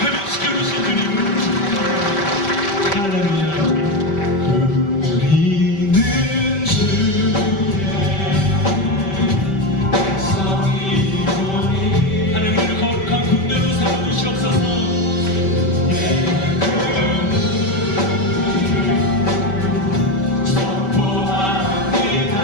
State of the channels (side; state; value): right; late; 5.1 ms